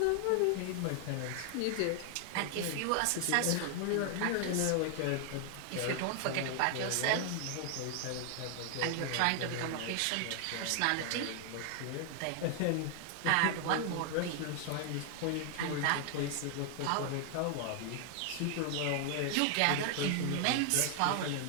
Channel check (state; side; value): different; both; correlation 0.00